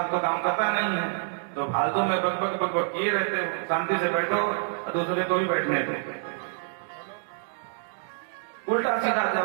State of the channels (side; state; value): left; silent; digital silence